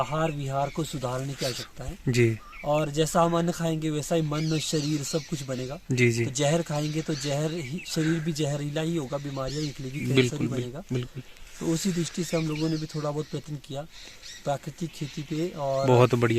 विहार को सुधारने की आवश्यकता है। जी और जैसा हम अन्न खाएंगे वैसा ही मन, शरीर सब कुछ बनेगा। जी जी, तो जहर खाएंगे तो जहर ही, शरीर भी जहरीला ही होगा, बीमारियां निकलेगी, कैंसर बिल्कुल ही बनेगा। बिल्कुल। तो उसी दृष्टि से हम लोगों ने भी थोड़ा बहुत प्रयत्न किया प्राकृतिक खेती पे। और बहुत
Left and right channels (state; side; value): identical; both; correlation 1.00